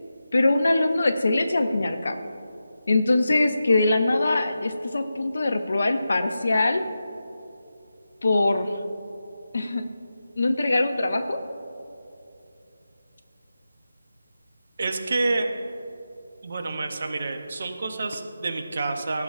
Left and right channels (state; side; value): inverted; both; correlation -0.91